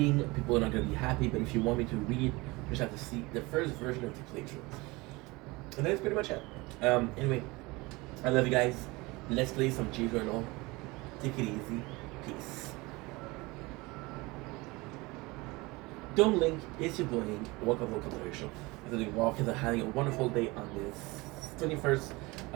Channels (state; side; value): quieter; left; 23.3 dB